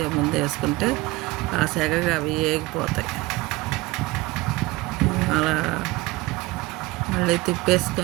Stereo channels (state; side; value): quieter; left; 21.3 dB